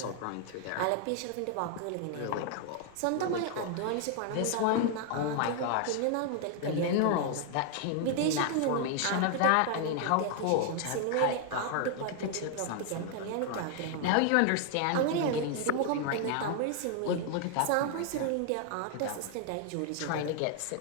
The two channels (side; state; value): both; different; correlation 0.00